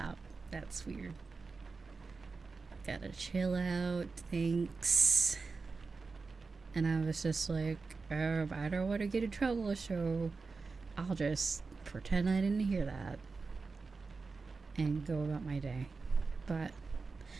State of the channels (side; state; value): left; quieter; 4.3 dB